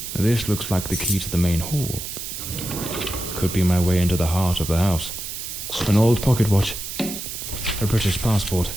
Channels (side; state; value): right; noise; hiss, 7 dB below the sound